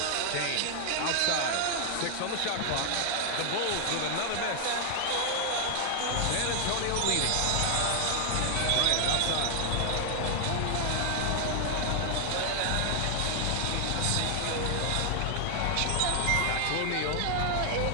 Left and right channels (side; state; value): both; different; correlation 0.00